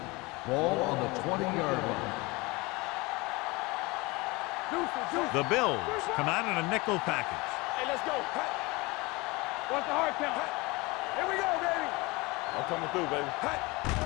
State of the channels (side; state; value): right; quieter; 24.1 dB